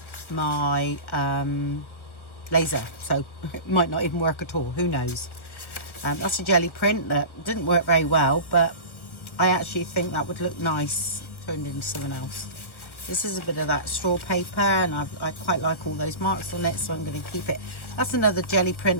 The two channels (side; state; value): right; late; 1.1 ms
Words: my laser, so it might not even work at all, who knows. That's a jelly print that didn't work very well, but I actually think that would look nice turned into something else. This is a bit of that straw paper and I quite like all those marks on it, so I'm going to keep it. That's another jelly